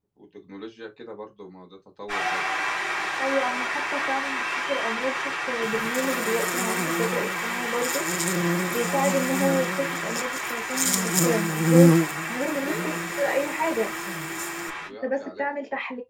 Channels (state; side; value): identical; both; correlation 1.00